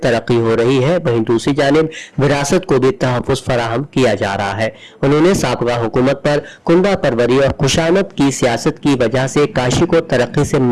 हो रही है, वहीं दूसरी जानिब विरासत को भी तहफ़्फ़ुज़ फराहम किया जा रहा है। उन्होंने साबिक़ा हुकूमत पर कुंडा परवरी और खुशामद की सियासत की वजह से काशी को तरक्की से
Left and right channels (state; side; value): identical; both; correlation 1.00